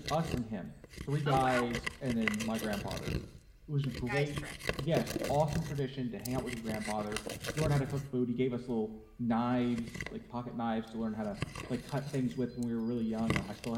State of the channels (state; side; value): identical; both; correlation 1.00